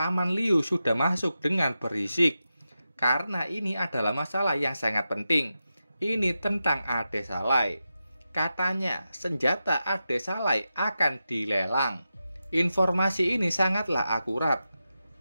Liu sudah masuk dengan berisik. Karena ini adalah masalah yang sangat penting. Ini tentang Ade Salai. Katanya, senjata Ade Salai akan dilelang. Informasi ini sangatlah akurat.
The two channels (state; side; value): inverted; both; correlation -0.90